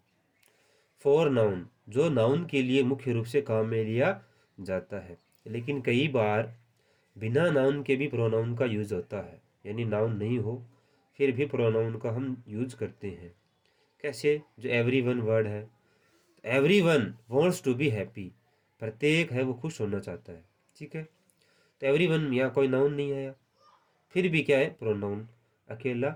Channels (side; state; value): both; identical; correlation 1.00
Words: फोर नाउन, जो नाउन के लिए मुख्य रूप से काम में लिया जाता है। लेकिन कई बार बिना नाउन के भी प्रोनाउन का यूज होता है, यानी नाउन नहीं हो फिर भी प्रोनाउन का हम यूज करते हैं। कैसे? जो एवरी वन वर्ड है, every one wants to be happy, प्रत्येक है वो खुश होना चाहता है। ठीक है, तो एवरी वन यहाँ कोई नाउन नहीं आया, फिर भी क्या है, प्रोनाउन अकेला